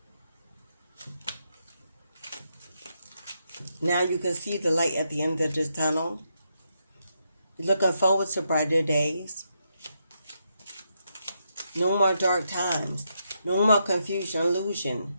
Now you can see the light at the end of this tunnel. You're looking forward to brighter days. No more dark times. No more confusion, illusion.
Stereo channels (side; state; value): both; inverted; correlation -0.81